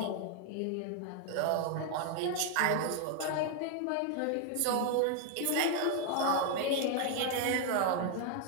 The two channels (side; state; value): both; different; correlation 0.00